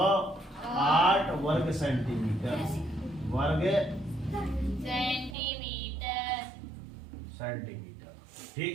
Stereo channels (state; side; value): drops out; left; at 5.4 s